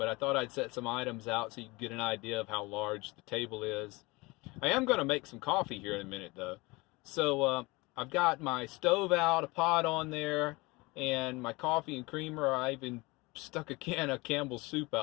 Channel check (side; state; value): right; quieter; 24.1 dB